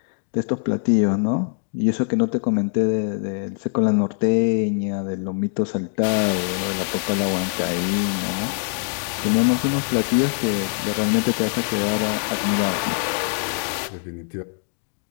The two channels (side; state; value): right; silent; 64 dB below the other